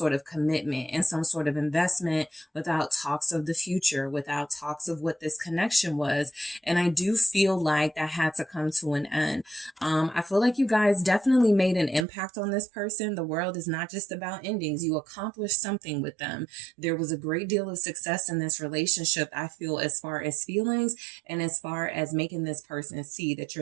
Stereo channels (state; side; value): drops out; left; at 12.1 s